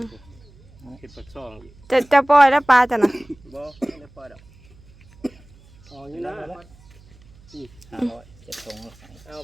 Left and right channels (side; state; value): right; noise; hum, 25 dB below the sound